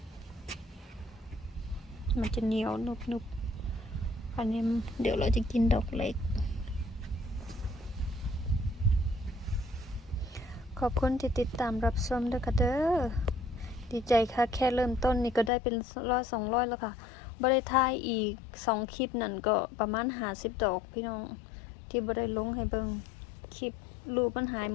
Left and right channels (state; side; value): drops out; right; at 15.5 s